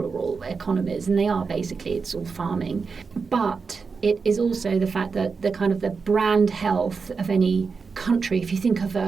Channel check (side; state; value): left; quieter; 5.0 dB